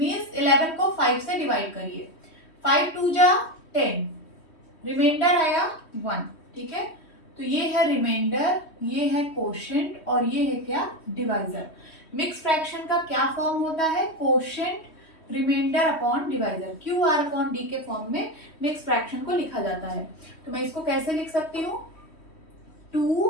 11 को 5 से डिवाइड करिए। 5 2 जा 10, रिमाइंडर आया 1। ठीक है, तो ये है रिमाइंडर, ये है कोशेंट और ये है क्या? डिवाइजर। मिक्स फ्रैक्शन का क्या फॉर्म होता है? Quotient remainder upon divisor, Q R upon D के फॉर्म में मिक्स फ्रैक्शन को लिखा जाता है। तो मैं इसको कैसे लिख सकती हूँ?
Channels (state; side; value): late; right; 3.1 ms